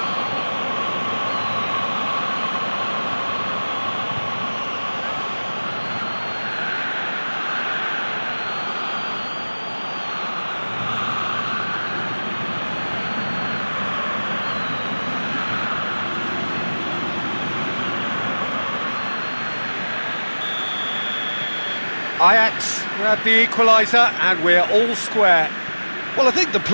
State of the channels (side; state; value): both; inverted; correlation -1.00